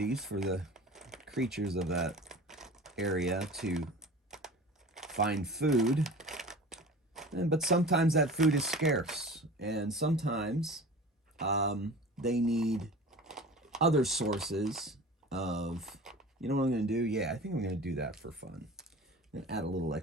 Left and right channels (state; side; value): normal; both; correlation 0.38